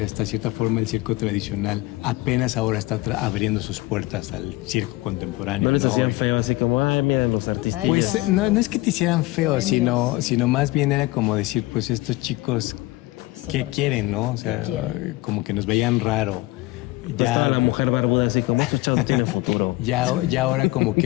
Hasta cierta forma el circo tradicional apenas ahora está abriendo sus puertas al circo contemporáneo. ¿No les hacían feo así como, ay, miren los artistas? Ahí Pues están no los es que te hicieran feo, bohemios. sino más bien era como decir, pues estos chicos, Es ¿qué otra quieren, cosa. no? O sea, ¿Qué quieren? como que nos veían raro. Pues estaba la mujer barbuda así como, estos chavos no tienen futuro. Ya ahora como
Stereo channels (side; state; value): right; quieter; 20.2 dB